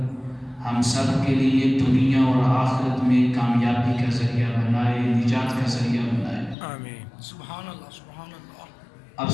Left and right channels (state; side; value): drops out; right; at 6.6 s